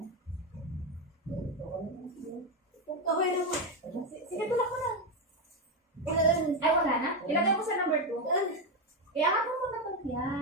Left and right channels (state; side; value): normal; both; correlation 0.09